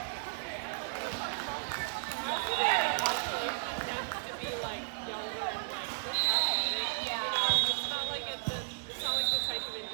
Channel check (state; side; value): silent; left; digital silence